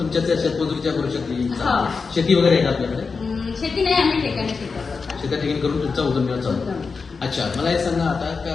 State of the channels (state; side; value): quieter; right; 4.8 dB